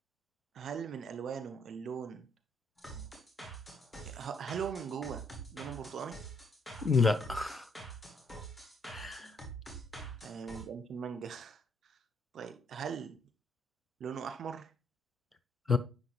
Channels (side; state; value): both; normal; correlation 0.70